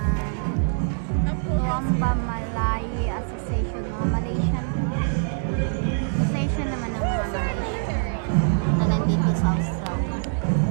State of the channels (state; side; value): silent; left; digital silence